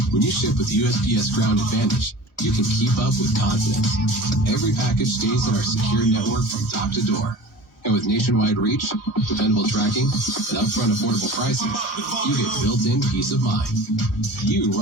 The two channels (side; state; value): both; normal; correlation 0.39